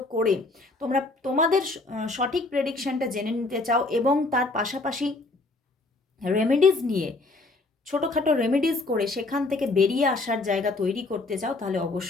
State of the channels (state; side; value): quieter; right; 3.2 dB